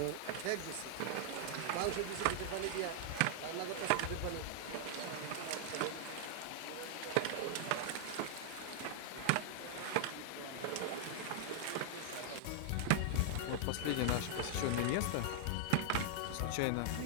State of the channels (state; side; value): different; both; correlation -0.01